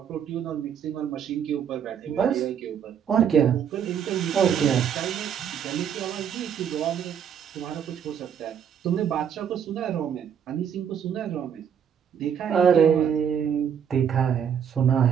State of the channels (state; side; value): quieter; left; 8.2 dB